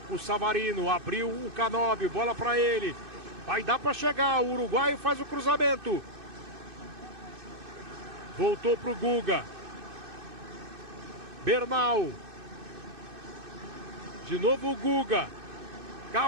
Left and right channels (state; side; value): late; left; 2.6 ms